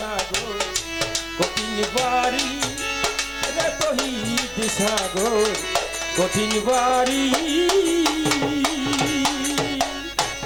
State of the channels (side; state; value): both; identical; correlation 1.00